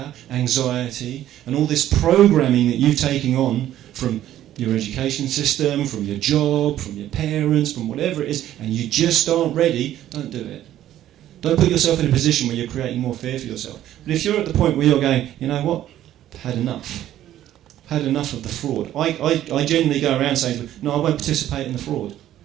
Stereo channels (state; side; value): quieter; left; 12.5 dB